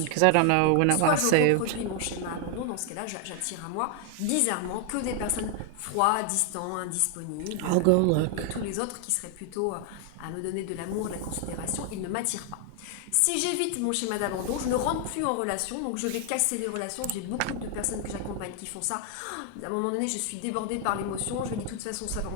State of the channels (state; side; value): different; both; correlation 0.00